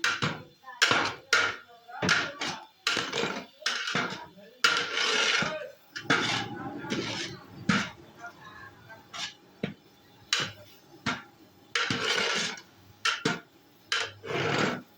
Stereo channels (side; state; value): both; identical; correlation 1.00